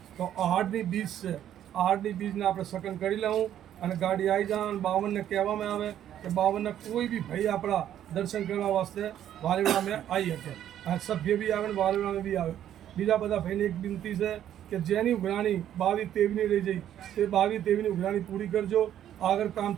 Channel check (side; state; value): left; quieter; 10.9 dB